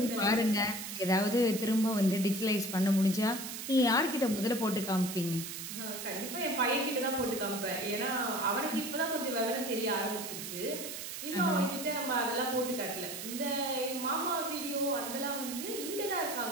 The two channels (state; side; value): noise; right; hiss, 7 dB below the sound